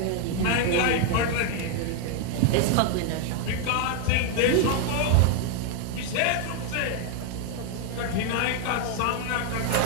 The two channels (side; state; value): both; different; correlation 0.01